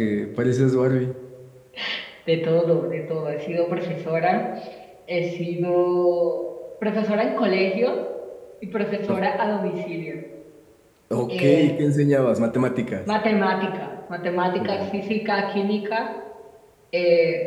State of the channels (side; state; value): both; identical; correlation 1.00